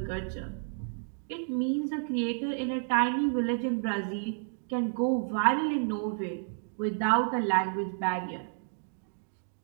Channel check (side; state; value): left; silent; digital silence